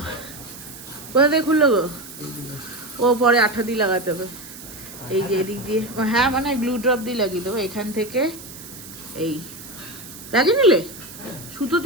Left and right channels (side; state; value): right; noise; hiss, 15 dB below the sound